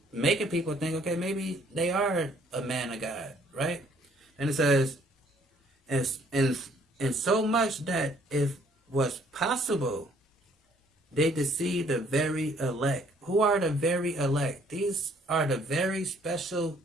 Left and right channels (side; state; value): both; normal; correlation 0.62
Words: making people think, okay, maybe they are a man of God, right? And it says, and so much that if was possible, they deceive the very elect. Who are the very elect? These are the very special